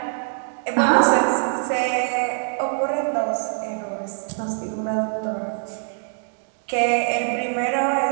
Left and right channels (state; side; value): silent; left; 62 dB below the other